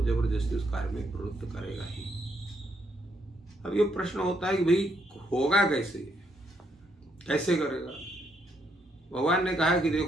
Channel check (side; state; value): both; normal; correlation 0.75